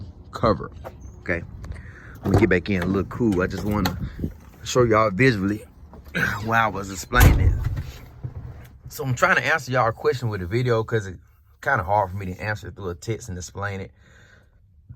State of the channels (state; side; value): identical; both; correlation 1.00